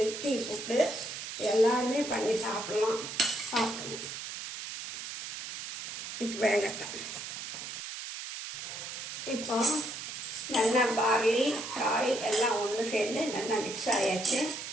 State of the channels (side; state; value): right; noise; hiss, 7 dB below the sound